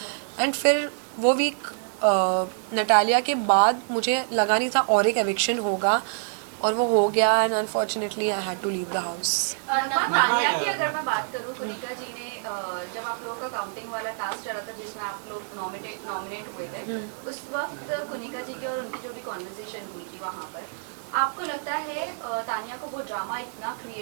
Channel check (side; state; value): left; silent; 58 dB below the other